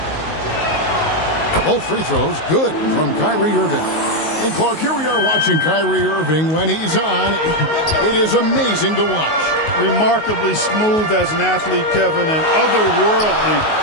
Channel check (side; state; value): right; late; 19 ms